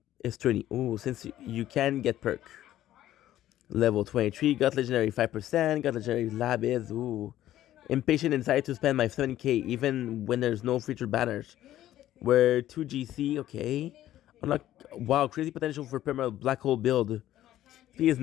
is 20. Ooh, since you can get perk. Level 23, got legendary 5%, got legendary lab is, ooh. Impatient and decided to spend my 70k even when there's no featured banners. We're 2GC, okay. Unlock, wow, crazy potential for permanent black hole build. P is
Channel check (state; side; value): quieter; right; 13.2 dB